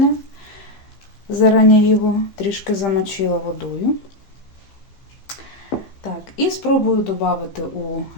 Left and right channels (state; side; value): late; right; 15 ms